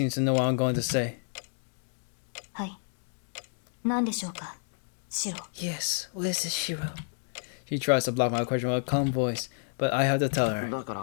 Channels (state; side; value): silent; right; digital silence